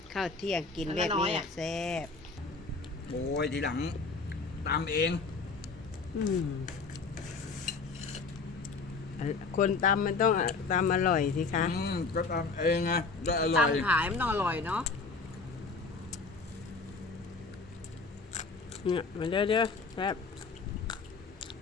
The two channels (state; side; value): quieter; right; 4.3 dB